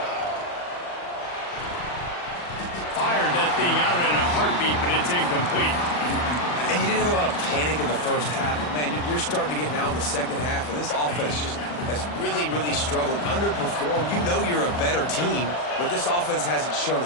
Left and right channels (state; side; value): late; right; 40 ms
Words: Fired that thing out in a heartbeat, but it's incomplete. And you didn't have a lot of panic in the first half, but man, you're starting to get now in the second half, and this offense just has really, really struggled, underperformed. You know you're a better team, but this offense hasn't shown